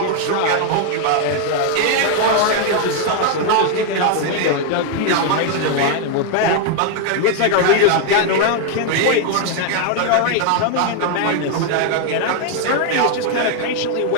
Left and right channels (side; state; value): both; different; correlation 0.00